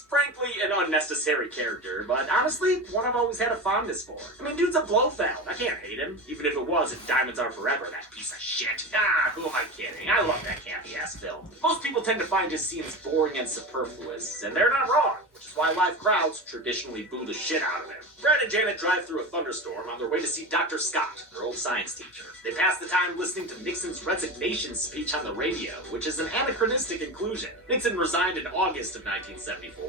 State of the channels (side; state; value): both; normal; correlation 0.25